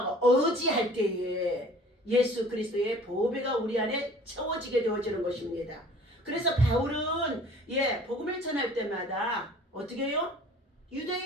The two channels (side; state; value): both; normal; correlation 0.49